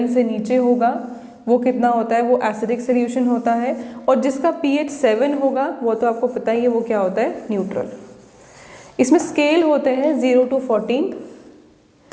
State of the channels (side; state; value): both; identical; correlation 1.00